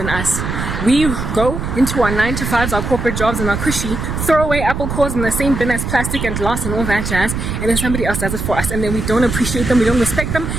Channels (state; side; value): noise; right; rumble, 4 dB below the sound